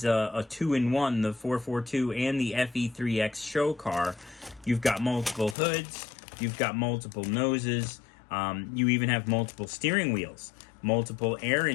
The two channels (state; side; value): drops out; right; at 5.6 s